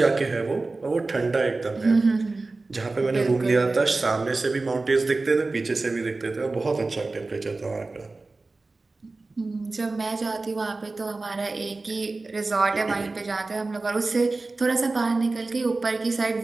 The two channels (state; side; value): quieter; left; 3.5 dB